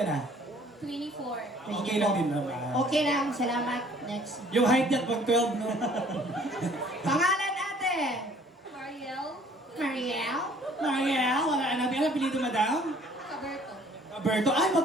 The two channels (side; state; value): both; normal; correlation 0.56